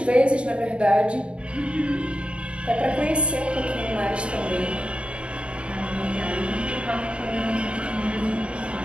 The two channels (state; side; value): late; left; 0.058 ms